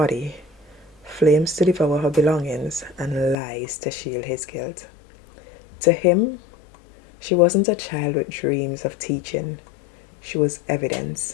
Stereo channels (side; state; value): right; drops out; at 3.4 s